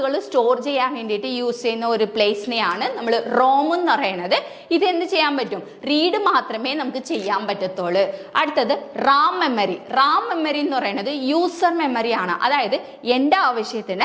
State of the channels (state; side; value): identical; both; correlation 1.00